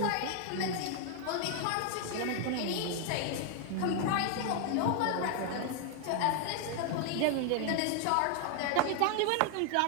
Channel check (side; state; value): both; different; correlation 0.00